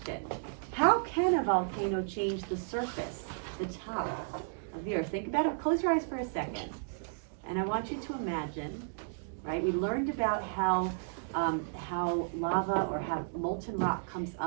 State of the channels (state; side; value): silent; left; digital silence